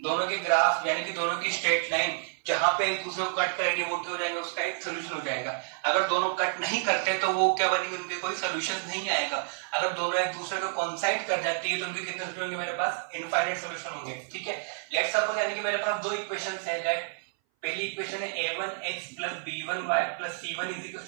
दोनों के ग्राफ यानी कि दोनों की स्ट्रेट लाइन जहां पे एक दूसरे को कट करेंगे वो क्या हो जाएगा, उसका एक सोल्यूशन हो जाएगा। अगर दोनों कट नहीं करते तो वो क्या बनेंगे, उनके कोई सोल्यूशन नहीं आएगा। अगर दोनों एक दूसरे को कोइंसाइड कर जाती है तो उनके कितने सोल्यूशन होंगे, मेरे पास इनफाइनाइट सोल्यूशन होंगे। ठीक है, लेट्स सपोज यानी कि मेरे पास दो इक्वेशंस है। दैट पहली इक्वेशन है a1x + b1y + c1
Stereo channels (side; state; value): left; silent; 58 dB below the other